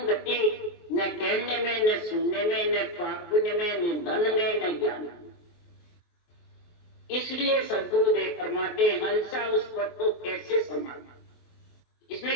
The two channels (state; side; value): late; right; 24 ms